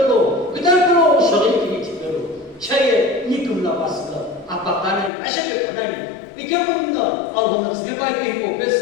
그 다음에 또 소리 이쪽 빼도 차에 니금 나왔어 아빠 가는 아시게 그다니 이게 뭐는 아우는 집에 빨리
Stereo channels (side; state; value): right; drops out; at 5.1 s